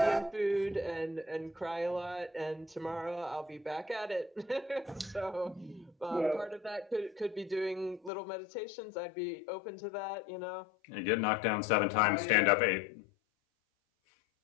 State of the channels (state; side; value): drops out; right; at 8.1 s